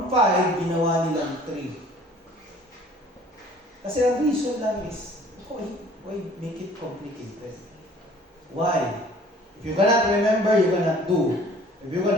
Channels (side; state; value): both; normal; correlation 0.52